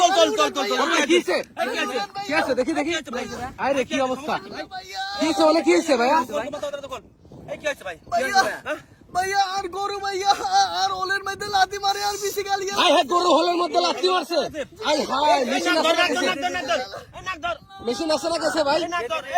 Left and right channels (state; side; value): identical; both; correlation 1.00